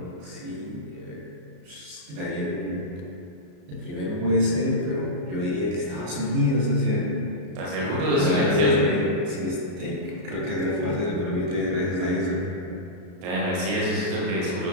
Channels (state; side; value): late; left; 33 ms